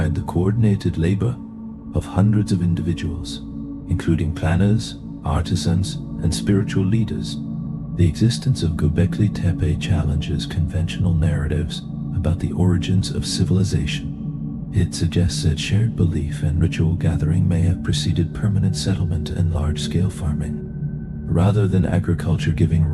the coordinated labor of hundreds of individuals, including planners, artisans, and spiritual leaders. The existence of Göbekli Tepe challenges conventional narratives about the origins of civilization. It suggests that shared belief and ritual gathering may have preceded permanent settlement and large-scale farming. Rather than agriculture giving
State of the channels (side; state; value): both; identical; correlation 1.00